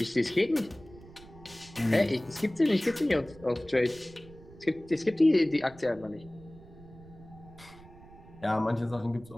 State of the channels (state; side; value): noise; right; rumble, 21 dB below the sound